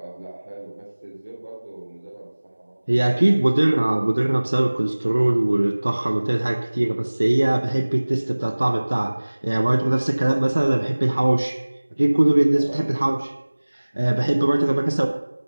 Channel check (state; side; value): inverted; both; correlation -1.00